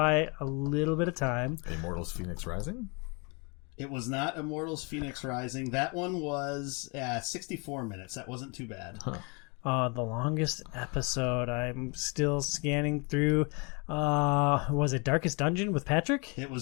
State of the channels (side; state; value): right; quieter; 32.0 dB